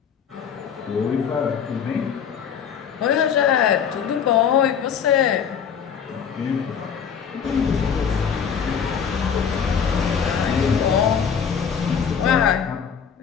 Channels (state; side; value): quieter; right; 7.4 dB